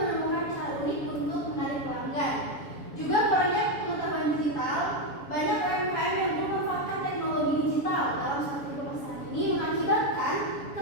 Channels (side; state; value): right; late; 7.1 ms